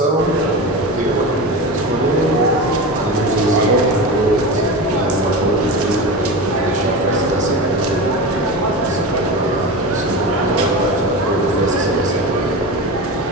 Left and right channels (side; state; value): both; normal; correlation 0.25